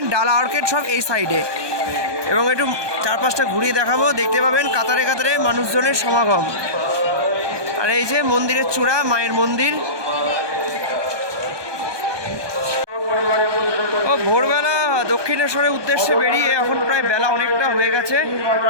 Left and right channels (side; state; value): left; late; 1.2 ms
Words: ডালা আর্কেড সব এই সাইডে। এবং একটু চারপাশটা ঘুরিয়ে দেখাবো, দেখতে পাবেন কাতারে কাতারে মানুষজনের সমাগম। আর এই যে মন্দিরের চূড়া, মায়ের মন্দির। ও ভোরবেলা দক্ষিণেশ্বরের উদ্দেশ্যে বেরিয়ে এখন প্রায় বেলা অনেকটা হয়ে গেছে।